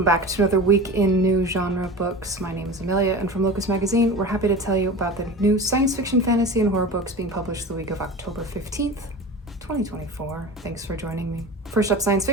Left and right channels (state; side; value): normal; both; correlation 0.32